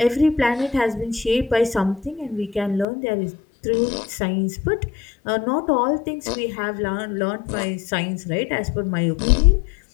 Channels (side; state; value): right; drops out; at 2.9 s